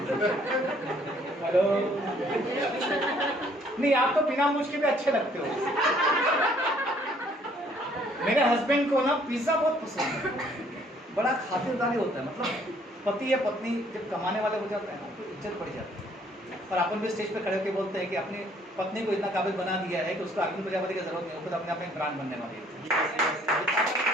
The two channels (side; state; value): both; normal; correlation 0.62